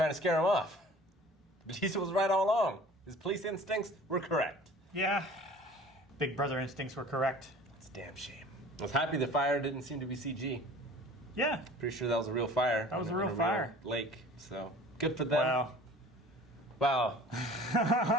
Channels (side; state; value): both; normal; correlation 0.46